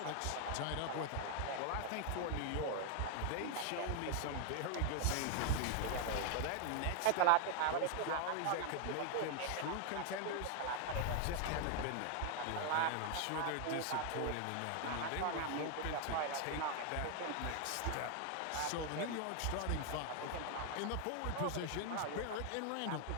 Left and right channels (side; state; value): both; different; correlation 0.00